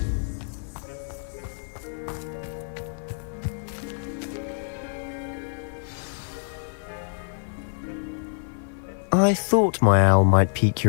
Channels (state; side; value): silent; right; digital silence